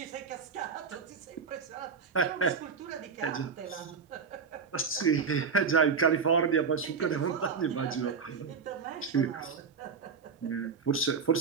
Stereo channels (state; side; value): quieter; left; 5.6 dB